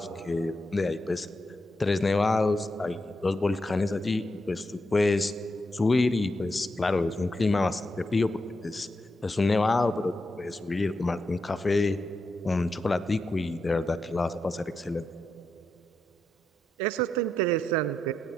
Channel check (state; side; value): normal; both; correlation 0.85